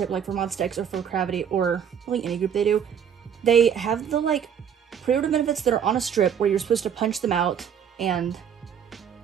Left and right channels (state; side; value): quieter; left; 8.2 dB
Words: like for Monster X or for Gravity or like any group they have the like pre-order benefits that are on a strip where you're supposed to punch them out, and